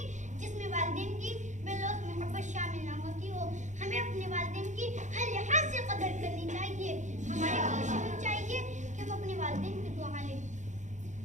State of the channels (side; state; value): left; late; 0.35 ms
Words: جس میں والدین کی بے لوث محبت شامل نہ ہوتی ہو. ہمیں اپنے والدین کی ہر لحاظ سے قدر کرنی چاہیے. ہماری کوشش ہونی چاہیے کہ ہم اپنے والدین کی دعا لیں.